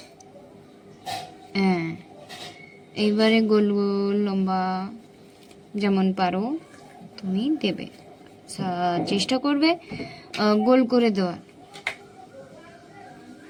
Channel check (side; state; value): both; identical; correlation 1.00